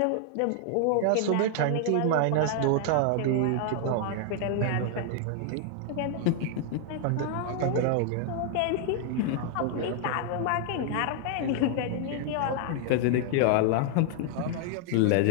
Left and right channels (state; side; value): different; both; correlation 0.00